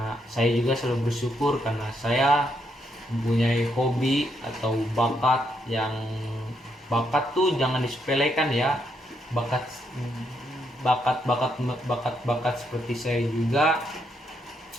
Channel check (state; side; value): normal; both; correlation 0.77